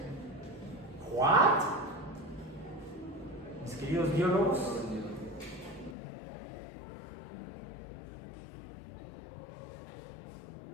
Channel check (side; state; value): right; drops out; at 6.0 s